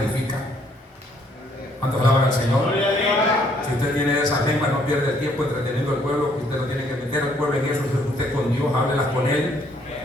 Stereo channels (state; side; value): normal; both; correlation 0.66